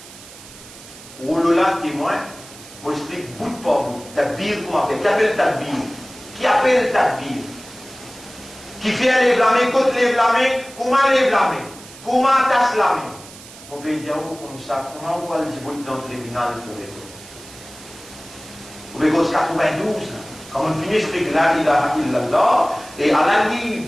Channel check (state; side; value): noise; right; hiss, 18 dB below the sound